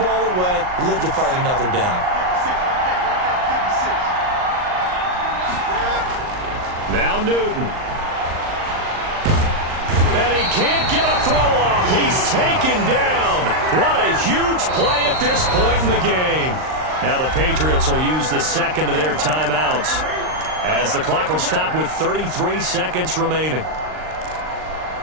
ball away, live to fight another down. Now Newton. And he can't get a throw off. He's taken down. What a huge play at this point in the game. Now the Patriots will use the second of their timeouts as the clock will stop with 33 seconds remaining.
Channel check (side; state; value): left; late; 39 ms